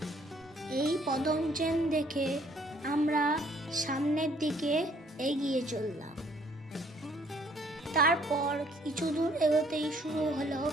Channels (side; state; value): both; normal; correlation 0.62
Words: এই পদম চেন দেখে আমরা সামনের দিকে এগিয়ে চললাম। তারপর কিছু দূর এগোতেই শুরু হলো